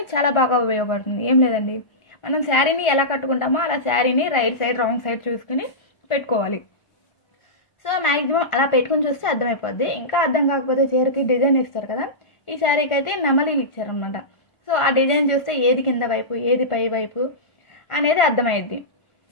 చాలా బాగా ఉపయోగపడుతుంది. ఏం లేదండి, మనం శారీని ఎలా కట్టుకుంటామో అలా శారీని రైట్ సైడ్ రాంగ్ సైడ్ చూసుకుని పెట్టుకోవాలి. సో మ్యాక్సిమం అలా పెట్టుకుని చూస్తే అర్థమైపోద్ది. ఇంకా అర్థం కాకపోతే చీరకి డిజైన్ ఇస్తారు కదా, ఈ శారీకి అయితే నెమలీలు ఇచ్చారనమాట. సో ఆ డిజైన్ చూస్తే ఏది కింద వైపు ఏది పై వైపు అనేది అర్థమైద్ది.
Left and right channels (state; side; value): late; right; 1.5 ms